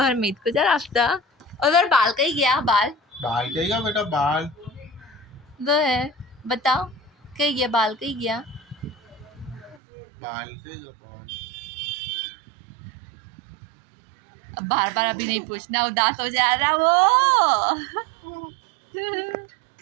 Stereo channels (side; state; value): left; drops out; at 9.8 s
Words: मीत को जा रास्ता और जोहर बाल कहीं गया बाल बाल कहेगा बेटा बाल जोहर बताओ कहीं गया बाल कहीं गया बाल कहेगा बाल अब बार बार अभी नहीं पूछना उदास हो जा रहा वो